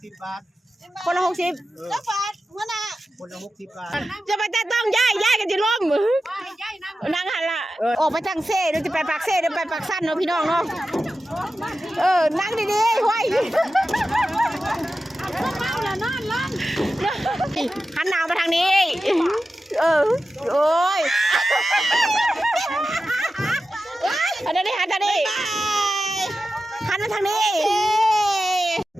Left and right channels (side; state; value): both; normal; correlation 0.93